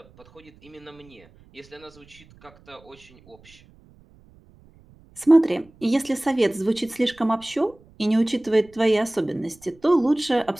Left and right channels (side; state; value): right; noise; rumble, 27 dB below the sound